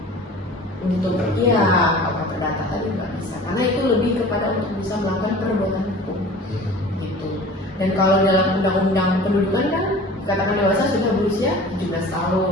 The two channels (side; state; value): both; normal; correlation 0.42